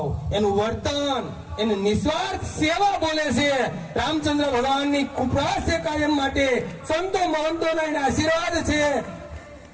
એનું વર્તન, એની નિસ્વાર્થ સેવા બોલે છે. રામચંદ્ર ભગવાનની કૃપા છે કાયમ માટે. સંતો મહંતોના એના આશીર્વાદ છે.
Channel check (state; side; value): identical; both; correlation 1.00